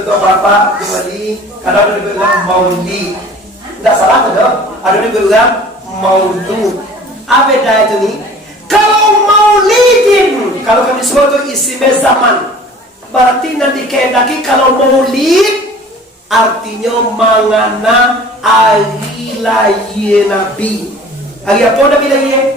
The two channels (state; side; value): normal; both; correlation 0.46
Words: apa-apa kembali. Karena ada yang bilang maulid. Tidak salah ada. Ada yang bilang maulud. Apa beda itu nih? Kalau maulidin, kalau kami sebut itu isim zaman. Berarti nanti kehendaki kalau maulid artinya mangana hari lahir Nabi. Hari apa Nabi lahir?